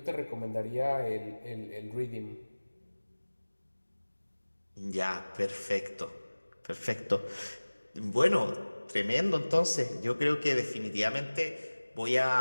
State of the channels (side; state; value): both; inverted; correlation -1.00